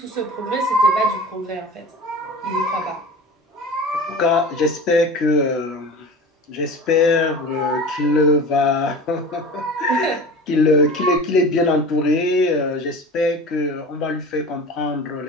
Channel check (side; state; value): both; normal; correlation 0.36